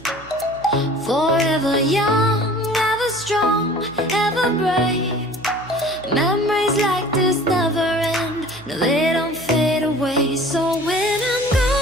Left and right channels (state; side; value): noise; right; hum, 21 dB below the sound